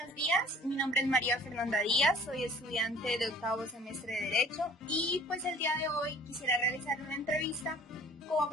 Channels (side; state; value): both; normal; correlation 0.51